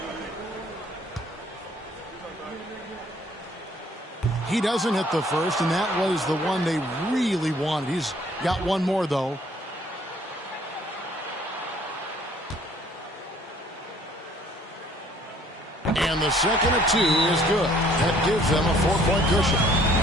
He doesn't hit the first, and that was the one they really wanted. He's got one more, though. And the second of 2 is good. That gives them a 4-point cushion.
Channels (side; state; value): both; normal; correlation 0.59